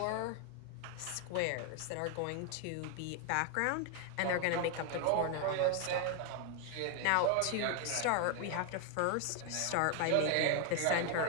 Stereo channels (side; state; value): both; different; correlation 0.01